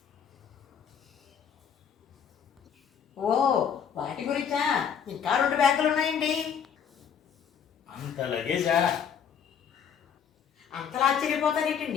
ఓ, వాటి గురించా? ఇంకా 2 బ్యాగులు ఉన్నాయండి. అంత లగేజా? అంతలా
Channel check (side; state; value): right; quieter; 7.7 dB